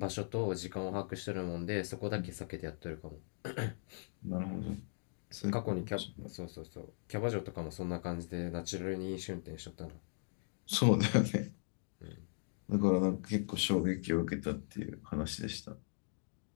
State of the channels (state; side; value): silent; right; digital silence